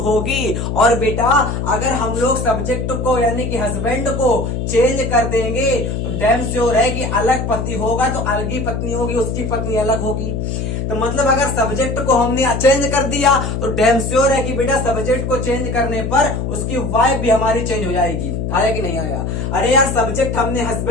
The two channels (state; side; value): noise; left; hum, 2 dB below the sound